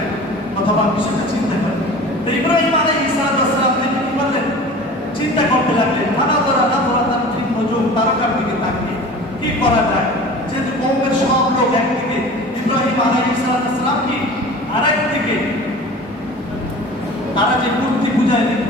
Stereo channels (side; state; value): both; normal; correlation 0.40